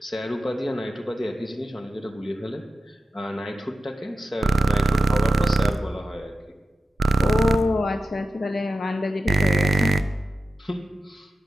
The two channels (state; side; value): normal; both; correlation 0.94